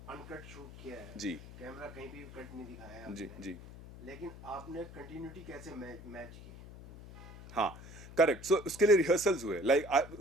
अनकट शूट किया है जी. कैमरा कहीं भी कट नहीं दिखाया है जी आपने। जी. लेकिन आपने कंटिन्यूटी कैसे मैच की? हाँ, करेक्ट. सो उसके लिए रिहर्सल्स हुए. Like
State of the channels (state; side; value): noise; left; hum, 15 dB below the sound